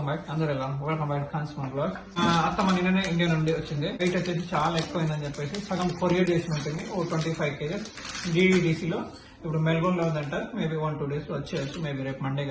back. అందరూ ఎలా welcome back ఖాన్స్ మన బ్లాగ్. అత్తమ్మ నిన్ననే ఇండియా నుండి వచ్చింది. వెయిట్ వచ్చేసి చాలా ఎక్కువైందని చెప్పేసి సగం కొరియర్ చేసి ఉంటుంది. ఓ 25 kgs DDDCలో. ఇప్పుడు మెల్బోర్న్ లో ఉందంట. మేబీ 1-2 days లో వచ్చేయచ్చు. మేబీ రేపు మండే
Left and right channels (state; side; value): identical; both; correlation 1.00